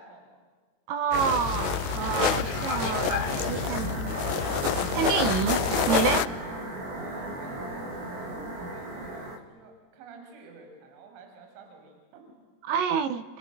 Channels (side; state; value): left; late; 22 ms